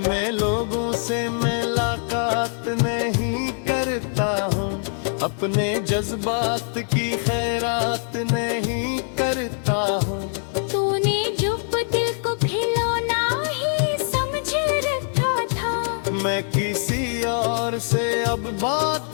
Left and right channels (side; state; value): right; silent; 63 dB below the other